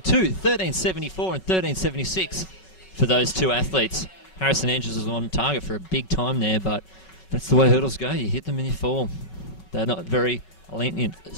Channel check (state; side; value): late; right; 5.3 ms